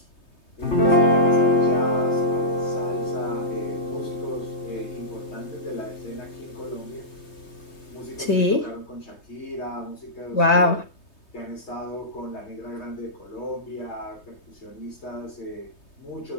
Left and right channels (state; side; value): late; right; 3.2 ms